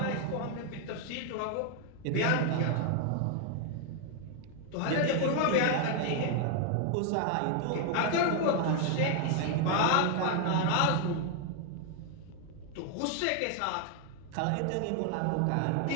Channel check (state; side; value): different; both; correlation 0.00